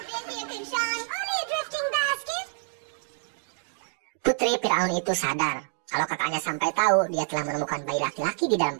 Putri Fir'aun itu sadar kalau kakaknya sampai tahu dia telah menemukan bayi laki-laki di dalam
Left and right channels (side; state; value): left; silent; 56 dB below the other